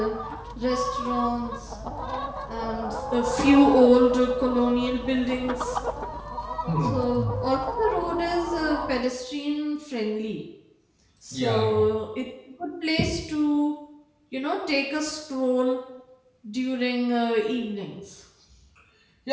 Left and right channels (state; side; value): identical; both; correlation 1.00